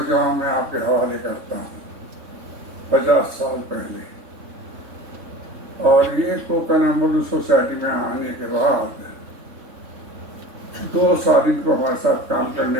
میں آپ کے حوالے کرتا ہوں 50 سال پہلے۔ اور یہ کوکن ایمبولینس سوسائٹی میں آنے کے بعد 2 سال ان کو ہمارے ساتھ کام کرنے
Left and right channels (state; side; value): late; left; 3.6 ms